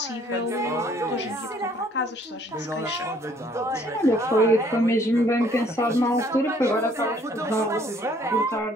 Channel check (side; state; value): both; normal; correlation 0.61